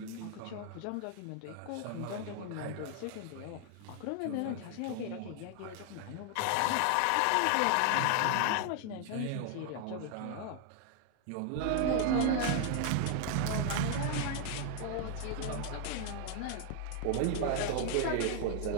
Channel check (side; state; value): both; different; correlation 0.00